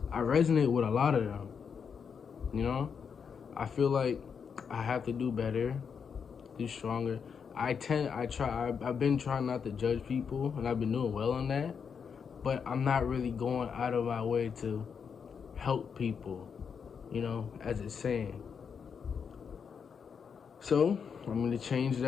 I resonate with a lot of them. You know, I feel like I have to do better, do stronger. I've been trying not to judge people, and I've been doing well on that, but I'm not really going out of my way to help people, you know, as it's saying. So I'm going to change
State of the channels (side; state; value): right; quieter; 6.5 dB